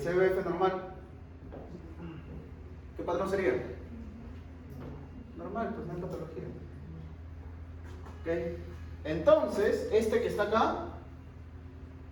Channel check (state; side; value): identical; both; correlation 1.00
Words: normal, ¿qué patrón sería? Normal, pues no hay patología. ¿Ok? Entonces, este que está acá